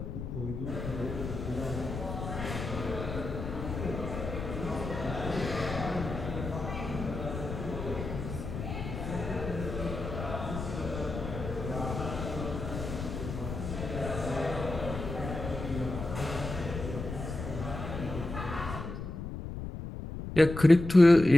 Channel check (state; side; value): noise; left; rumble, 6 dB below the sound